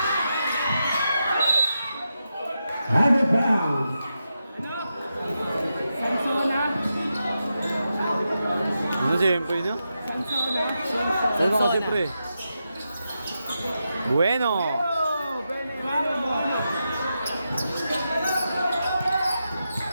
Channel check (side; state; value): both; inverted; correlation -0.87